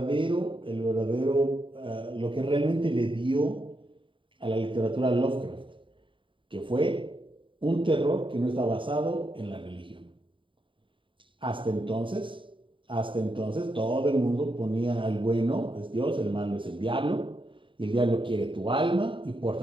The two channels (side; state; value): left; late; 0.25 ms